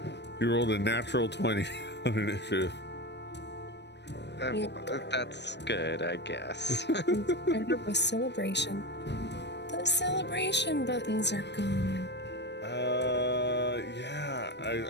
He rolled a natural 20 on initiative. That's good, I guess. Part of a celebration. The celebration buttons are gone. Yeah.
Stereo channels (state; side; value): late; right; 0.50 ms